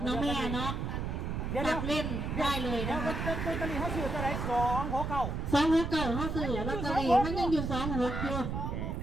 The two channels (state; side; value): noise; right; rumble, 3 dB below the sound